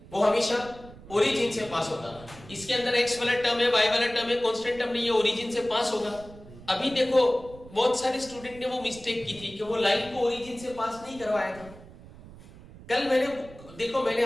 वो हमेशा ओरिजिन से पास होगा। इसके अंदर x वाला टर्म है, y वाला टर्म है, कांस्टेंट टर्म नहीं है, ओरिजिन से पास होगा। अभी देखो बहुत सारे स्टूडेंट ने वो मिस्टेक की थी कि वो लाइन को ओरिजिन से पास नहीं करवाया था। कल मैंने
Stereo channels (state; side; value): noise; right; rumble, 19 dB below the sound